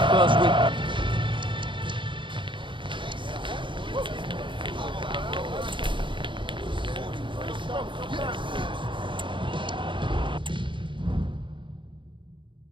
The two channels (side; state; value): left; late; 0.24 ms